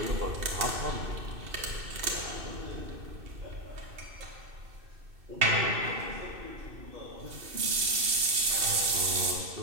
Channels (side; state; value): left; late; 2.6 ms